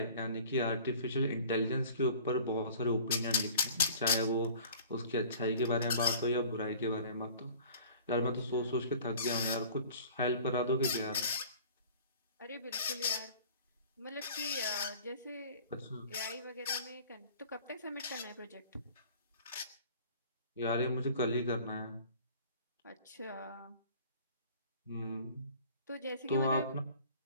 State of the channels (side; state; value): both; inverted; correlation -0.47